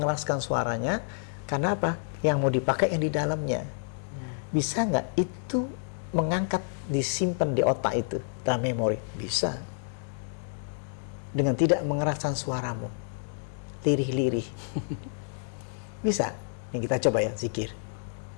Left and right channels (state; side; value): silent; right; digital silence